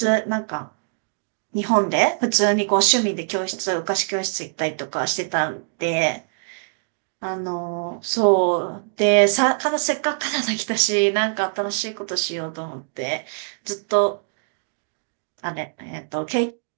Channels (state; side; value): silent; left; digital silence